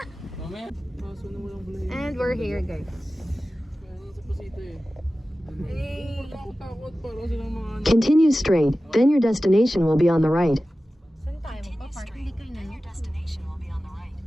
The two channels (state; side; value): normal; both; correlation 0.95